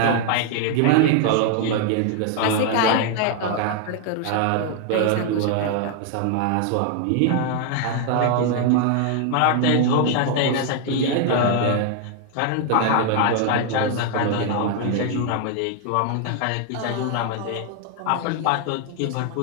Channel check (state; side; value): different; both; correlation 0.00